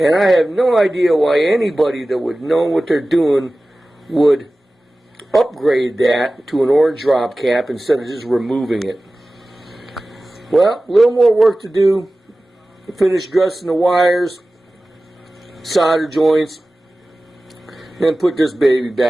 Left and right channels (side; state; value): both; normal; correlation 0.96